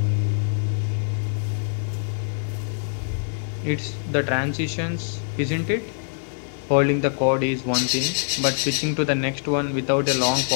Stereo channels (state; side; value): silent; right; digital silence